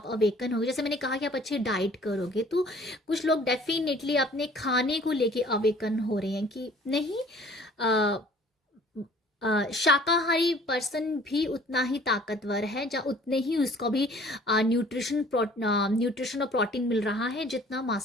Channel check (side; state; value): both; normal; correlation 0.53